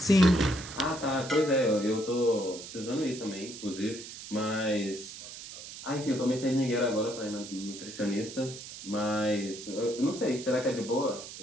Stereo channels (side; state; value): right; noise; hiss, 12 dB below the sound